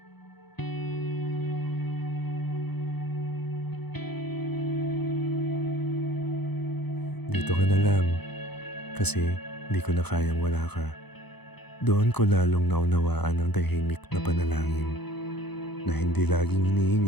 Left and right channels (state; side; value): late; right; 0.98 ms